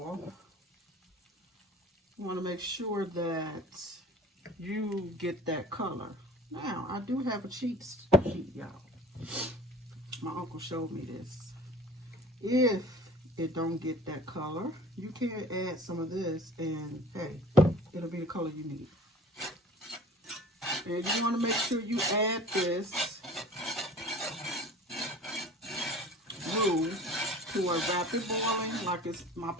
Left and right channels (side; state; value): both; normal; correlation 0.43